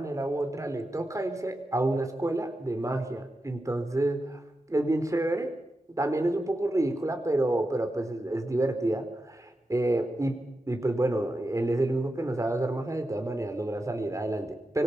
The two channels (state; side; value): normal; both; correlation 0.89